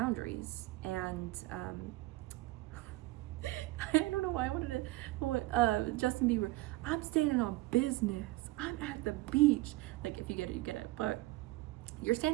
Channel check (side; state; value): left; quieter; 19.4 dB